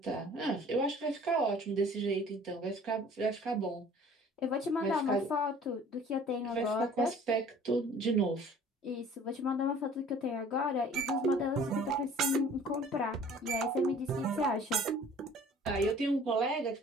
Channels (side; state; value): both; normal; correlation 0.50